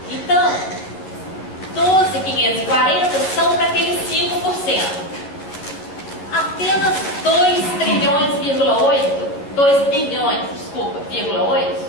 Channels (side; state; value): right; late; 11 ms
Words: Então, 12.540 são para aqueles 5%. Apenas 2 bilhões,